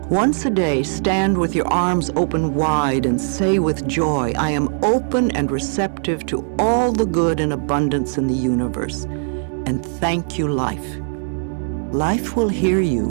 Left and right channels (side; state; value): left; silent; digital silence